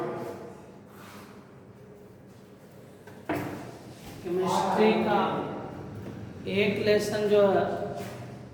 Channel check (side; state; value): both; identical; correlation 1.00